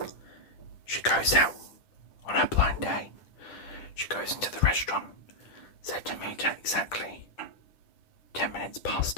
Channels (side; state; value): right; late; 10 ms